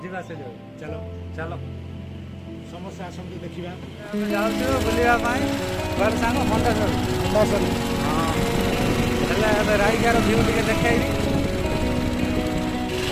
ଯିବା ସେ ଯାଉ चलो ଚାଲ समस्त आसतु देखा ଆମେ ଯାଉଛୁ ବୁଲିବା ପାଇଁ କୁଆଡ଼େ ସାଙ୍ଗ ମଣ୍ଡେଶ୍ୱର ହଁ ହେଲେ ଏବେ ରାଇକାର ଭିଉ ଟିକେ ଦେଖେଇବି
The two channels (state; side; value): identical; both; correlation 1.00